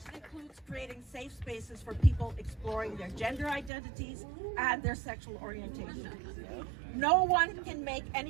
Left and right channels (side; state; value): left; drops out; at 3.7 s